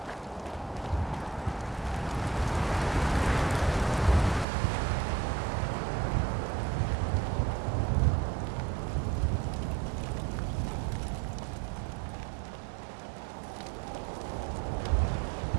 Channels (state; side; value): drops out; left; at 4.5 s